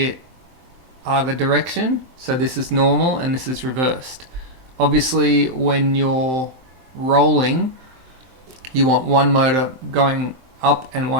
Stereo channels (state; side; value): late; left; 23 ms